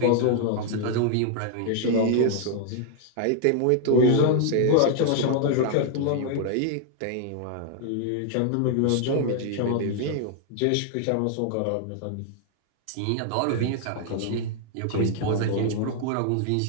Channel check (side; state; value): both; different; correlation 0.00